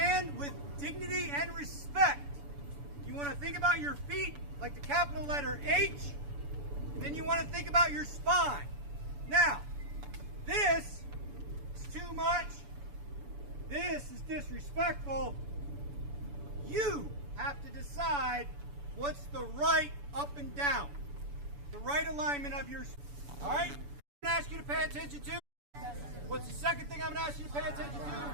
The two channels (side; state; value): left; late; 7.0 ms